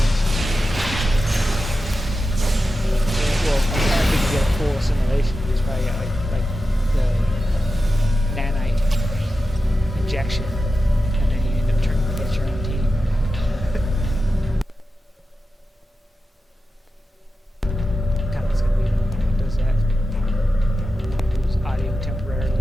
Well, I'm trying to think you get a full assimilation. You just probably got like the nanite injection, and then you end up turning against your own team. Kind of what's gonna be when it does that. Lose audio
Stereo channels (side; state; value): both; normal; correlation 0.92